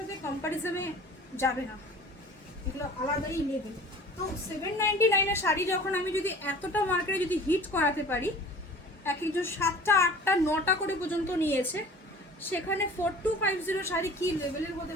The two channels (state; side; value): normal; both; correlation 0.44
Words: কম্পারিজনে যাবে না, এগুলো আলাদাই লেভেল। তো 799 শাড়ি যখন আমি যদি এতটা মার্কেটে যদি হিট করাতে পারি, এক একজন 7টা 8টা 9টা করে পর্যন্ত নিয়েছে, সেখানে 4250 শাড়ি কি লেভেলের হতে